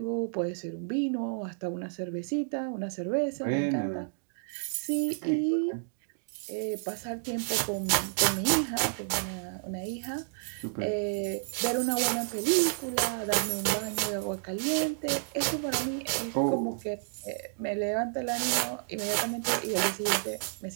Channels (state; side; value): silent; left; digital silence